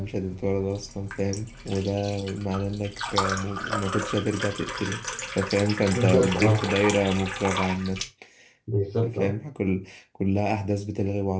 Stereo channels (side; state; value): both; identical; correlation 1.00